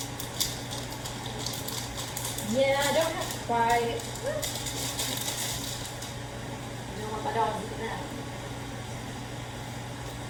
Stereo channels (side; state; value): both; identical; correlation 1.00